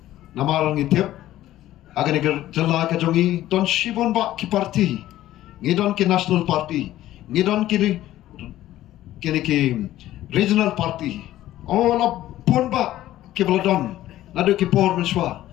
namarang itip aga dika jala ka jomi don shibon ba ki parti ngidon ki national party ngidon ki regional party la pun ba ke baladon nadu ki por menswa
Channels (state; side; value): quieter; right; 14.2 dB